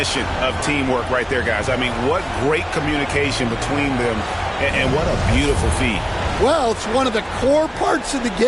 of teamwork right there, guys. I mean, what great communication between them, and what a beautiful feat. Well, it's one of the core parts of the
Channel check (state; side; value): identical; both; correlation 1.00